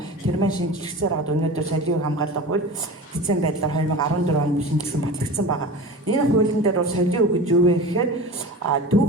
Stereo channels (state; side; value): normal; both; correlation 0.33